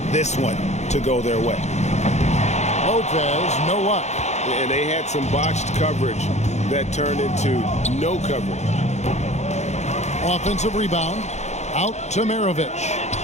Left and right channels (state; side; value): late; right; 0.33 ms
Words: this one to go their way. Lopez, no luck. And they had some botched coverage that turned into no coverage. Offensive rebound. Out to Maravich.